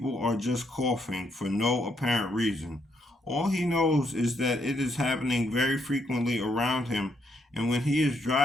are just coughing for no apparent reason. All he knows is that it is happening very frequently around him, and when he is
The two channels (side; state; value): both; normal; correlation 0.75